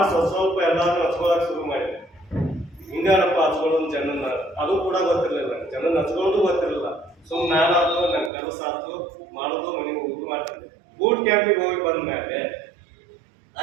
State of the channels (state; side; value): drops out; left; at 8.3 s